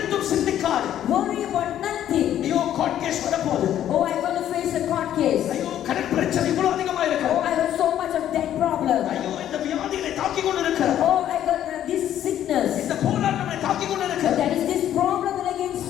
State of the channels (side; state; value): right; quieter; 11.2 dB